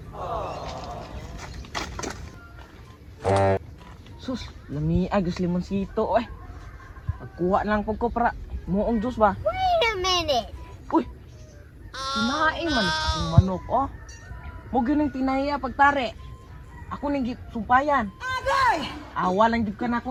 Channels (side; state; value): both; identical; correlation 1.00